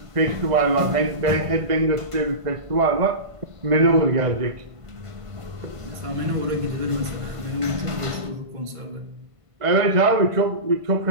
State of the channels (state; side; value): late; left; 1.5 ms